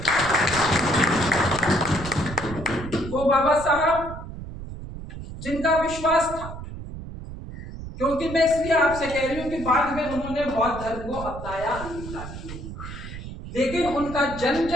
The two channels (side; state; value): right; noise; rumble, 10 dB below the sound